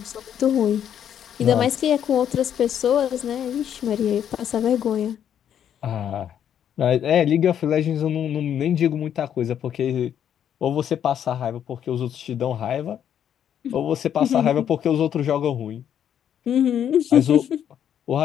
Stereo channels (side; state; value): right; quieter; 9.4 dB